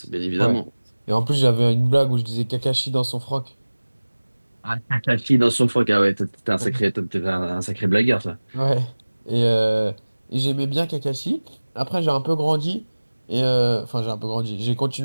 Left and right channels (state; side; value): inverted; both; correlation -1.00